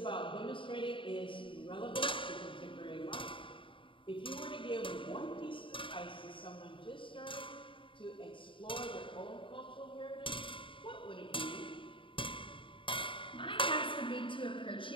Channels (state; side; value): late; right; 0.25 ms